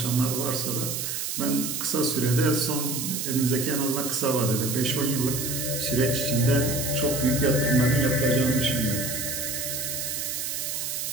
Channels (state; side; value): noise; right; hiss, 3 dB below the sound